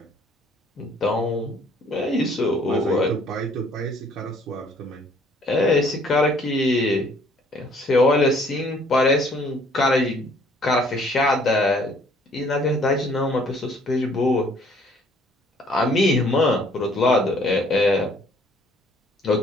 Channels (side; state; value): both; normal; correlation 0.60